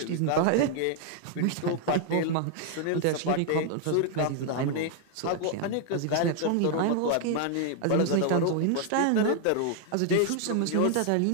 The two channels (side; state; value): both; different; correlation 0.00